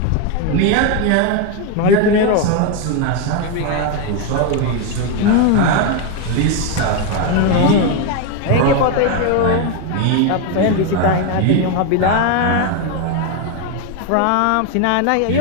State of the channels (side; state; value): both; different; correlation 0.01